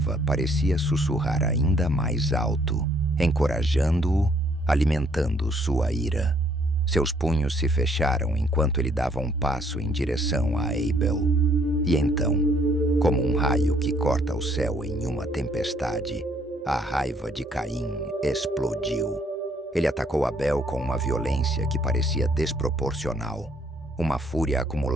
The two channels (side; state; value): both; normal; correlation 0.65